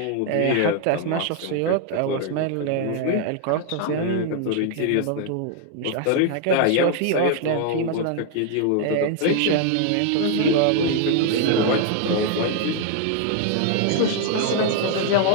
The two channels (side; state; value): both; different; correlation 0.00